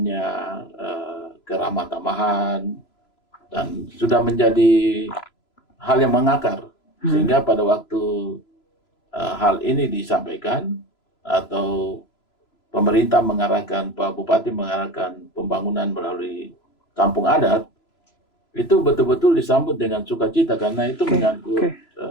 keramah tamahan, dan sudah menjadi hal yang mengakar. Sehingga pada waktu hal ini disampaikan atau pemerintah mengarahkan, Pak Bupati mengarahkan pembangunan melalui kampung adat, itu betul-betul disambut dengan sukacita karena itu menyangkut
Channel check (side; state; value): right; late; 3.0 ms